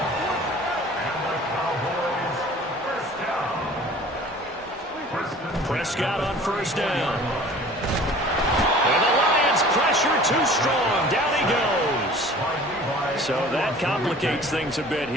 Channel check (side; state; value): both; normal; correlation 0.46